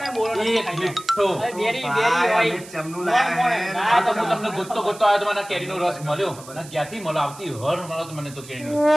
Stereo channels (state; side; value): noise; right; hiss, 18 dB below the sound